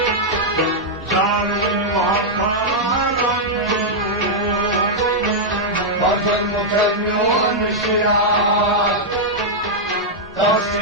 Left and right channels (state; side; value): normal; both; correlation -0.05